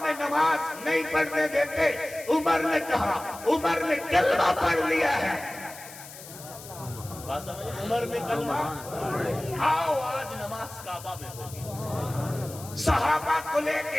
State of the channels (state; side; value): noise; left; hiss, 15 dB below the sound